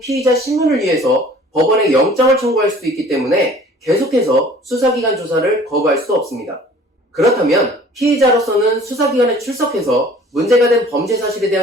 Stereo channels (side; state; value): both; normal; correlation 0.50